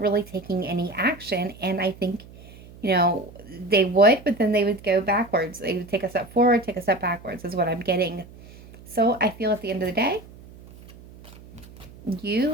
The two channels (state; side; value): noise; right; hum, 20 dB below the sound